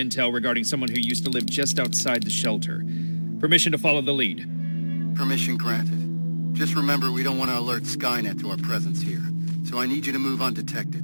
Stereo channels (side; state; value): both; inverted; correlation -1.00